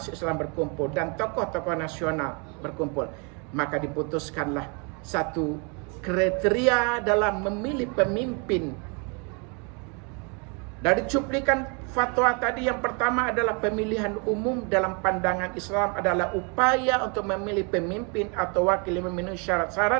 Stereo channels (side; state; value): left; quieter; 34.6 dB